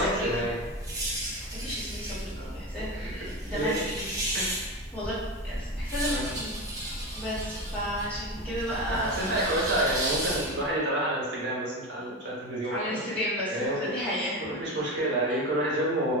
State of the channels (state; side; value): normal; both; correlation 0.22